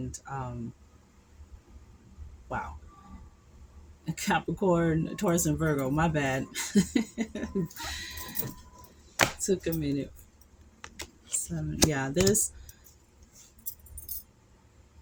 wow, Capricorn, Taurus, and Virgo. My bad. Took a minute. 7. Yeah, there's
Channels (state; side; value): identical; both; correlation 1.00